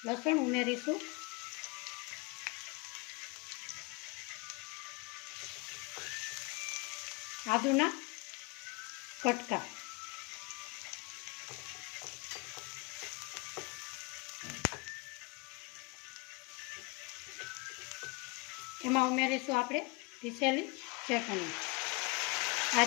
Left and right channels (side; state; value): right; quieter; 27.5 dB